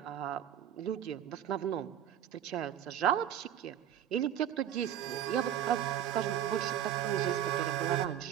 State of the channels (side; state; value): left; quieter; 10.3 dB